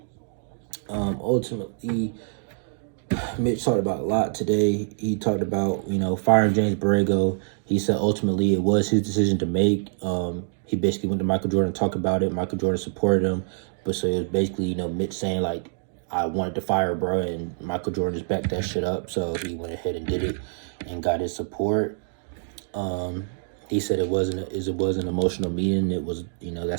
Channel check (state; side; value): silent; left; digital silence